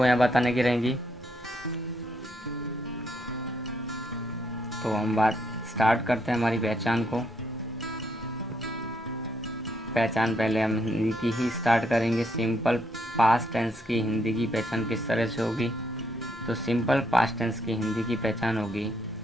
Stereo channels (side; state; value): both; normal; correlation 0.74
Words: यहाँ बताने की रहेंगी। तो हम बात स्टार्ट करते हैं हमारी पहचान को। पहचान पहले हम हिंदी की ही स्टार्ट करेंगे। सिंपल पास्ट टेंस की हिंदी की पहचान किस तरह से होगी। तो सिंपल पास्ट टेंस की हिंदी की पहचान होगी,